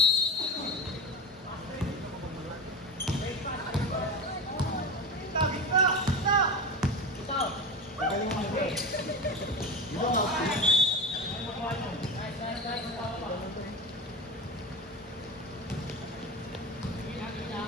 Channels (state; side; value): normal; both; correlation 0.25